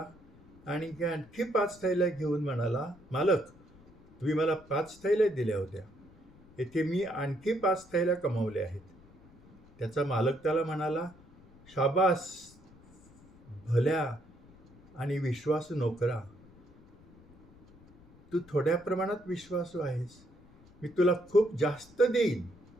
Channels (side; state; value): left; noise; rumble, 25 dB below the sound